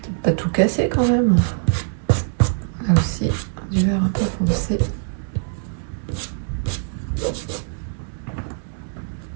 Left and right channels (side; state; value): left; silent; digital silence